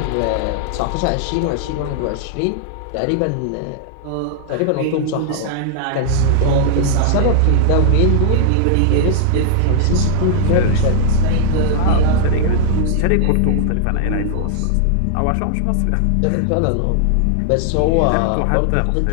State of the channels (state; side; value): different; both; correlation -0.01